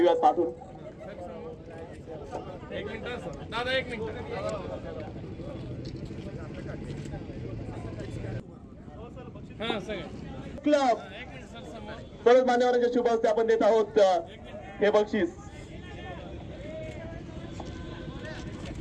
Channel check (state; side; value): identical; both; correlation 1.00